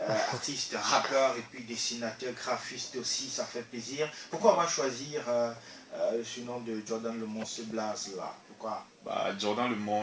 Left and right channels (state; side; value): identical; both; correlation 1.00